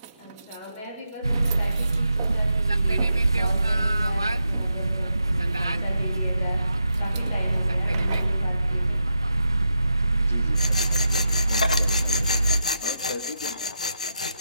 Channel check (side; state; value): both; inverted; correlation -0.85